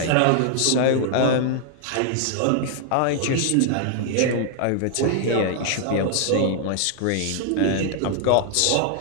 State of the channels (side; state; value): both; different; correlation 0.00